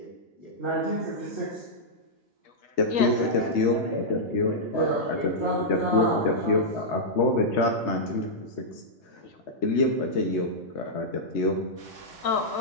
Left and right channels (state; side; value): normal; both; correlation -0.08